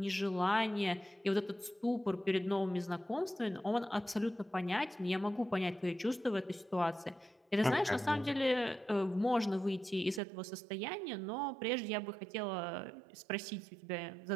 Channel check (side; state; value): left; drops out; at 10.2 s